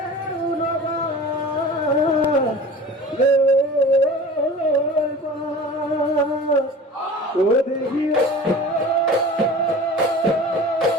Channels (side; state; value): both; normal; correlation 0.39